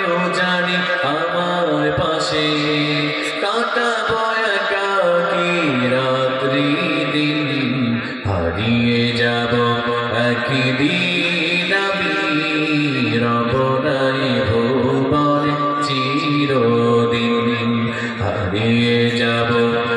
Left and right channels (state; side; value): identical; both; correlation 1.00